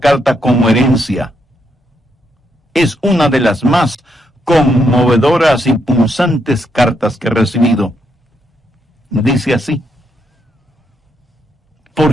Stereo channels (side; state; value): both; normal; correlation 0.78